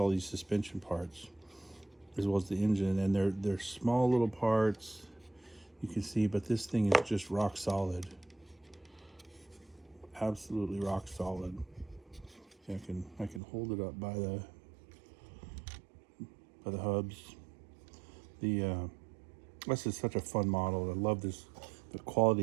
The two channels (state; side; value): drops out; left; at 13.4 s